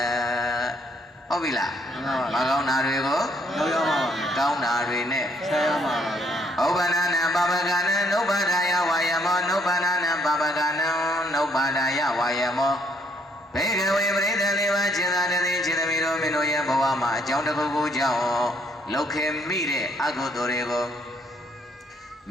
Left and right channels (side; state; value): both; normal; correlation 0.68